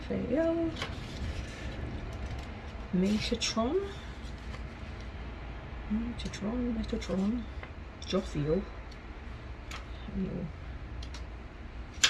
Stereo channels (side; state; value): both; identical; correlation 1.00